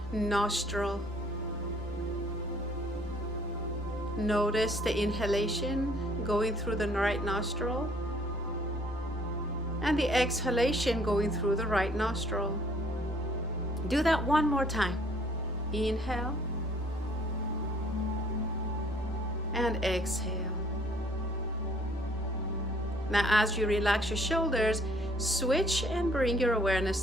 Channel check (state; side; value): noise; right; rumble, 18 dB below the sound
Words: nostril. Notice the inhalation going through the right nostril and the exhalation going through the right nostril. Do that one more time. Inhale and exhale. Now, as you relax your shoulders, switch and bring your awareness